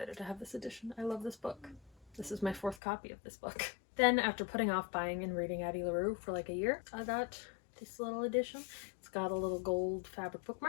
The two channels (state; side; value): drops out; right; at 2.8 s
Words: to have this edition. I love this book. This is my 4th copy of this book. Then, after putting off buying and reading Addie LaRue for like a year, I got this little edition. It's got a little gold fabric